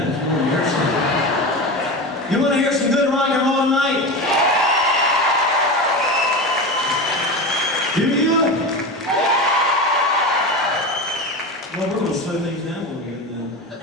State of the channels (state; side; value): normal; both; correlation 0.24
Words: You want to hear some good rock and roll tonight? Do you? Well, we're going to slow things down a little bit then.